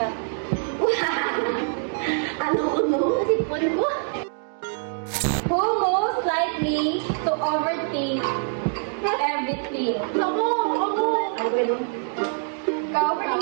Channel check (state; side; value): silent; left; 62 dB below the other